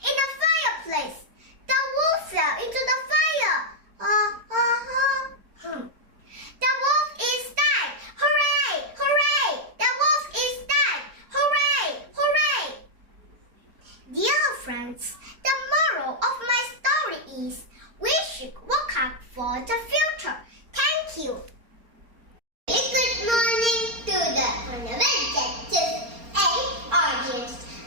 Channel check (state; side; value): late; left; 4.3 ms